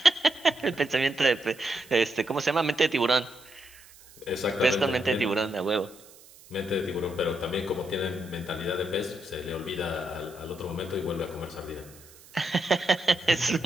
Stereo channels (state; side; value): noise; right; hiss, 23 dB below the sound